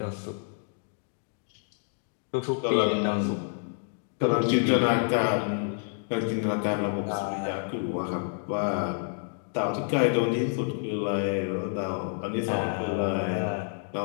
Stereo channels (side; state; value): right; silent; digital silence